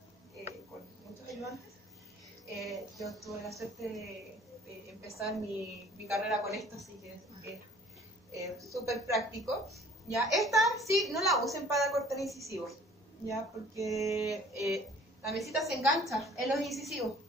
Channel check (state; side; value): normal; both; correlation 0.52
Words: con muchos ayudantes. Yo tuve la suerte de empezar mi carrera con esto, así que es súper práctico. ¿Ya? Esta sí, no la usen para cortar incisivos, ¿ya? Porque la mesita se engancha en los incisivos.